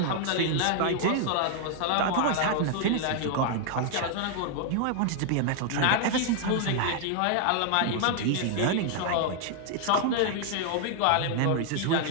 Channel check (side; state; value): both; different; correlation 0.00